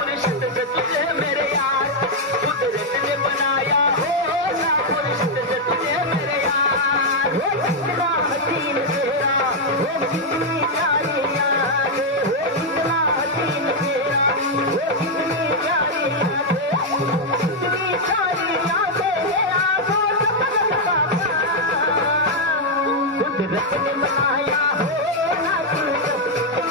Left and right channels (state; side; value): normal; both; correlation -0.01